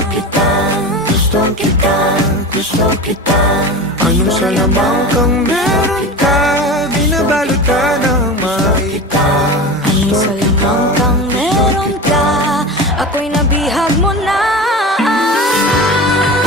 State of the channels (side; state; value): both; normal; correlation 0.29